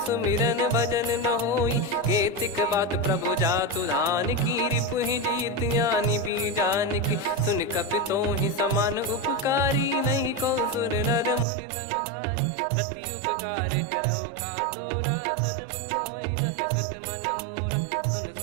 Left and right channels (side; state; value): left; drops out; at 11.5 s